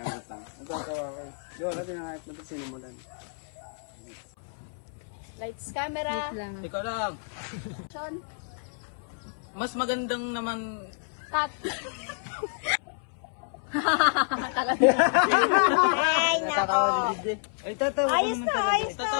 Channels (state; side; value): silent; right; 59 dB below the other